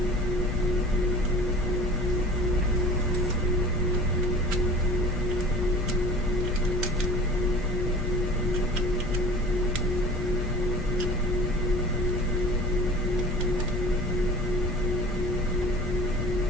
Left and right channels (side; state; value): both; normal; correlation 0.41